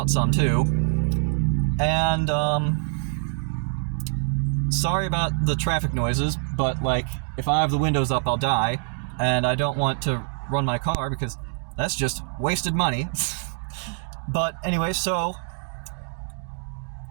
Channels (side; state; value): left; silent; 55 dB below the other